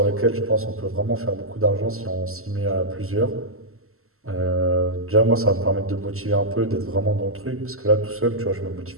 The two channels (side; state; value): left; late; 0.63 ms